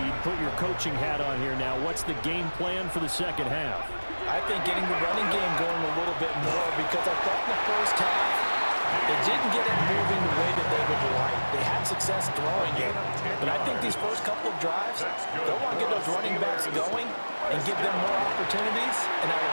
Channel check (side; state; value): both; inverted; correlation -1.00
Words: Put your coaching hat on here now. What's the game plan for the second half? I think getting the running game going a little bit more because I thought in the first half they didn't get it moving the way that they would like. They had success throwing it, but I think these first couple of drives, they'll want to get those running backs going and give them more opportunities, and I will